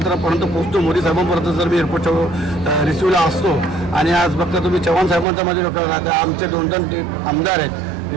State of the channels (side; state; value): left; drops out; at 5.2 s